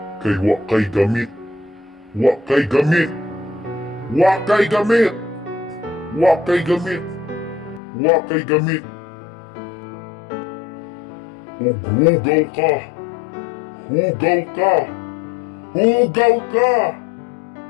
Kay wa kay gamit. Wa kay gamit. Wa kay gamit. Wa kay gamit. Wa kay gamit. Ug hugaw ka. Hugaw ka. Hugaw ka.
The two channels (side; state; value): right; drops out; at 7.8 s